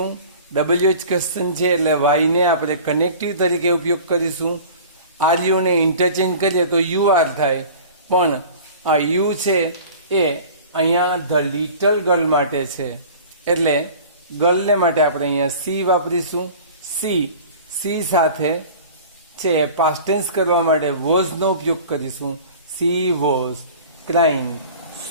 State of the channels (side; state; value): both; inverted; correlation -0.42